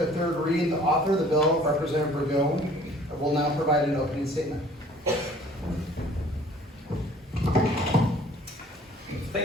a third reading. The author of the bill, Representative Burgone, will now provide an opening statement.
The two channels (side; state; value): both; normal; correlation 0.53